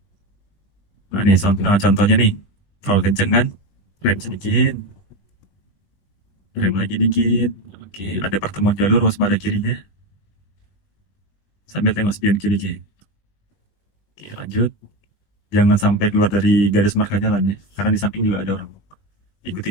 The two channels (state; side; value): late; right; 20 ms